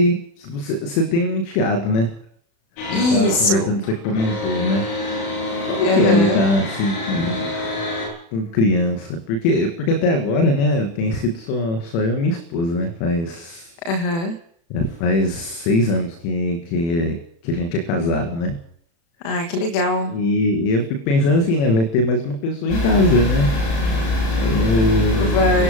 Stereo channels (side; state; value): right; late; 36 ms